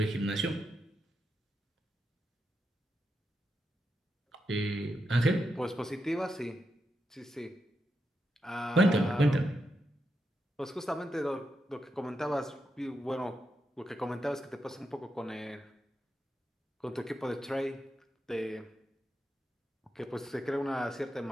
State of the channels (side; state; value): both; normal; correlation 0.85